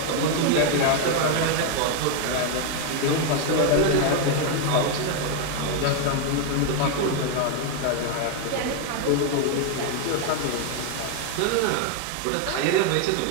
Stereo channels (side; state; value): both; different; correlation 0.01